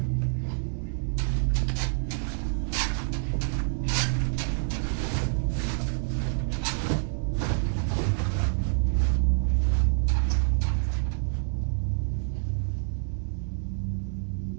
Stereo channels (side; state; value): left; silent; 60 dB below the other